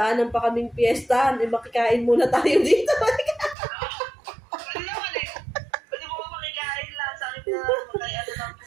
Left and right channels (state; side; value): drops out; left; at 3.6 s